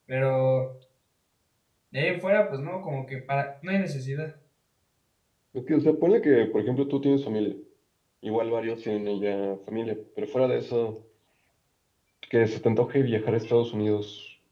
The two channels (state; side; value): identical; both; correlation 1.00